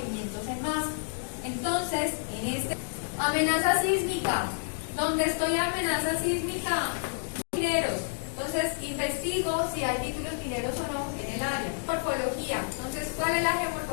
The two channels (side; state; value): right; silent; digital silence